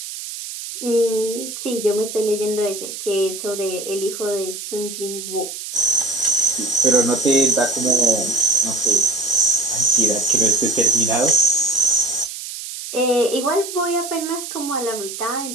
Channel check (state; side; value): noise; right; hiss, 9 dB below the sound